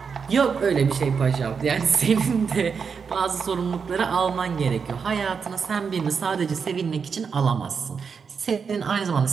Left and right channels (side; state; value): left; quieter; 6.0 dB